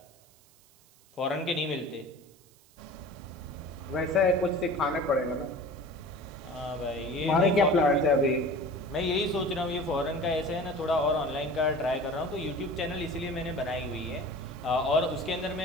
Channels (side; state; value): right; noise; hiss, 28 dB below the sound